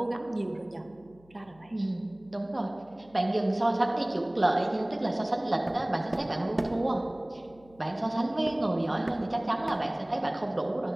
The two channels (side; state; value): left; noise; hum, 27 dB below the sound